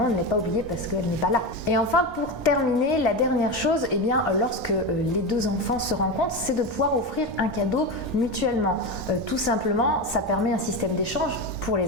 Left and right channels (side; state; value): both; normal; correlation 0.18